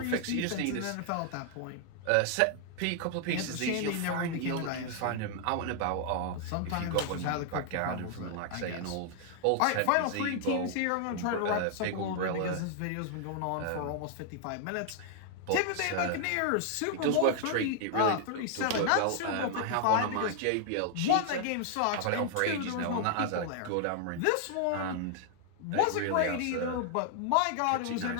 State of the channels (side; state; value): both; different; correlation 0.00